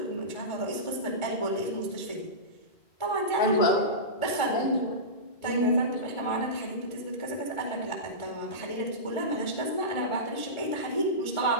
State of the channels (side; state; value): right; late; 1.4 ms